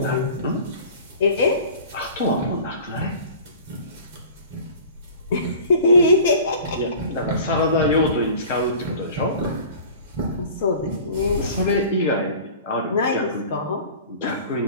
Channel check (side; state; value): both; inverted; correlation -0.42